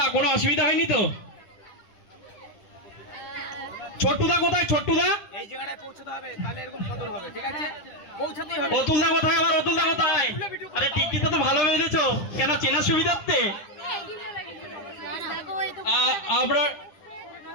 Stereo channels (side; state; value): right; late; 9.8 ms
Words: কোনো অসুবিধা হয়নি তো? ছোট্টদা কোথায়? ছোট্টদা এই জায়গাটায় পৌঁছতে হবে, তাহলে এরকম কদর হবে, ঠিক আছে? পৌঁছাতেই হবে। অতুলদা কোথায়? আবার অতুলদা কোথায়? আরে টিকিটটা তো ভালো বেঁধেছো, কেন চেনার সুবিধার্থে? আমরা